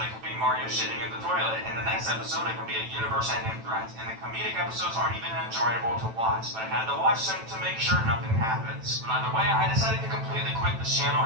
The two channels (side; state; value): left; late; 9.0 ms